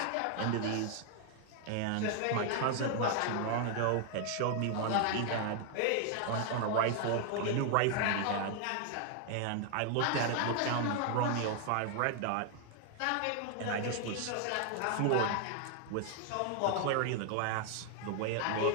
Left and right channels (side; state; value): both; different; correlation 0.00